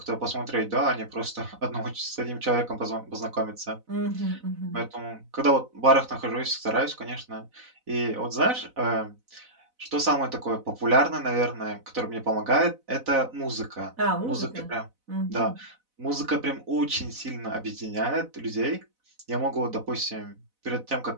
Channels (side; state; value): left; late; 4.0 ms